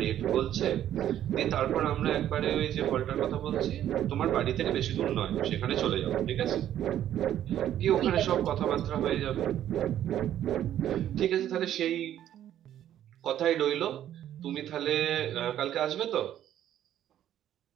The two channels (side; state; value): left; quieter; 11.3 dB